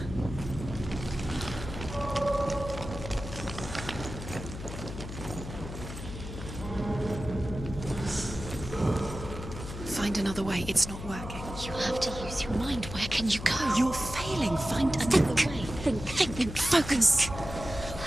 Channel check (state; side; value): noise; left; hum, 9 dB below the sound